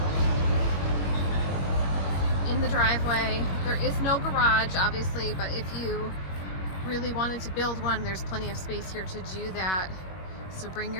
In the driveway. There is no garage, obviously, but if you really wanted to build one, there's plenty of space here to do that. So bring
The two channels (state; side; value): late; right; 21 ms